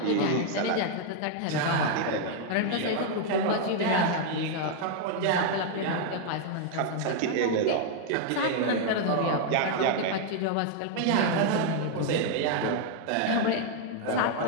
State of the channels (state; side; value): different; both; correlation 0.00